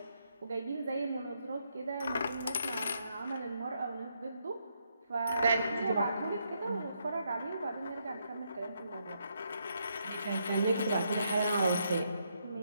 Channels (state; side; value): inverted; both; correlation -0.77